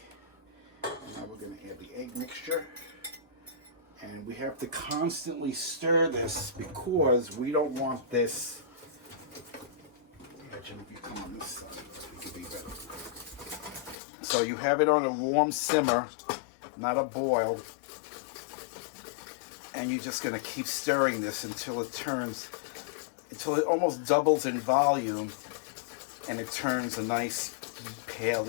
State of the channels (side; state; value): right; drops out; at 14.0 s